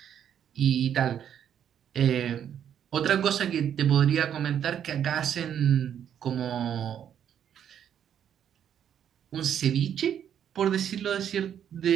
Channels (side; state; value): left; quieter; 9.3 dB